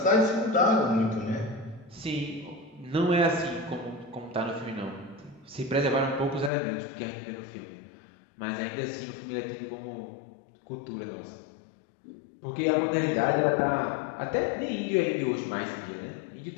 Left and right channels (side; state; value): right; drops out; at 6.5 s